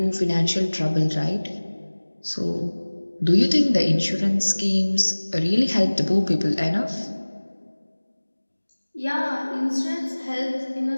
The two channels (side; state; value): both; inverted; correlation -1.00